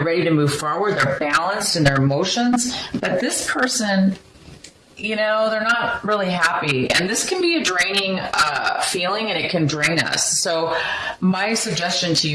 ready to move forward. They're balanced in their emotions. But this person, they're not really happy. And this can be a draining feeling, and it can drain us. So my suggestion to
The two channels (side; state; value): both; identical; correlation 1.00